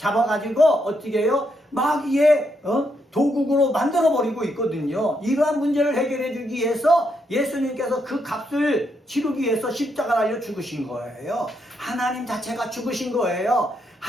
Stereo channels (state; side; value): normal; both; correlation 0.78